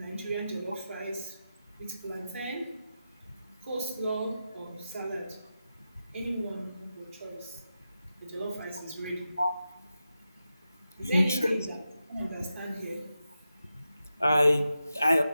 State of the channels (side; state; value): both; inverted; correlation -0.90